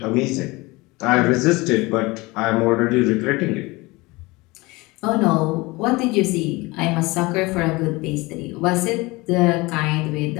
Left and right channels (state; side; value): quieter; right; 22.9 dB